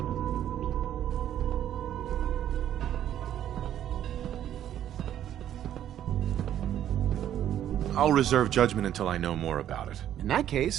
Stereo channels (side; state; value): left; quieter; 11.0 dB